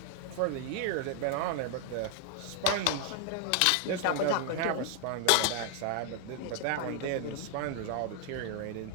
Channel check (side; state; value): both; different; correlation 0.00